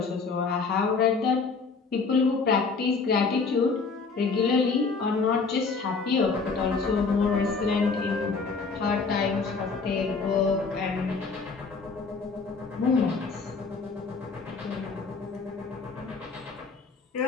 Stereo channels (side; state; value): right; quieter; 4.6 dB